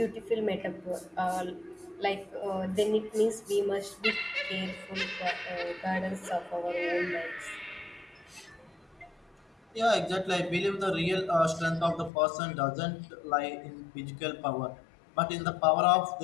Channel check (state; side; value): drops out; right; at 12.1 s